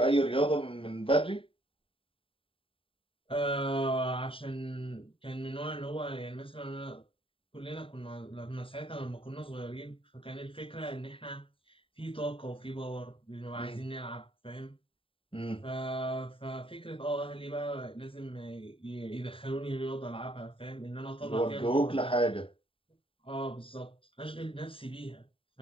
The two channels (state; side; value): late; right; 0.26 ms